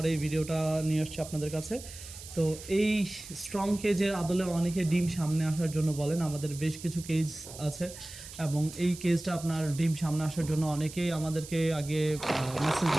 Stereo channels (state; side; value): noise; right; hiss, 14 dB below the sound